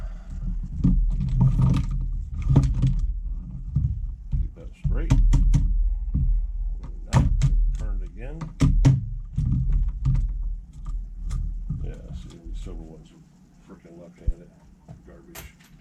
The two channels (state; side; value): identical; both; correlation 1.00